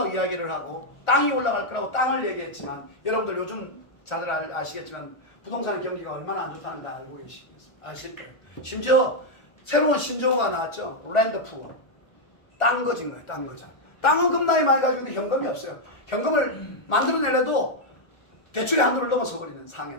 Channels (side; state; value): right; late; 1.4 ms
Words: 이야기를 하고 땅이 올라갈 거라고 땅을 얘기했지만 여러분들 요즘 다들 아시겠지만 부동산 경기가 얼마나 안 좋다는 걸 알고 아실 거예요. 심지어 새로운 신조어가 나왔죠. 랜드 푸어. 땅 거진 거예요. 땅 거자. 땅은 겁나게 많이 가지고 있는데 현금이 없어요. 현금을 만들어내려도 대출의 한도를 넘어서 버리는 상황에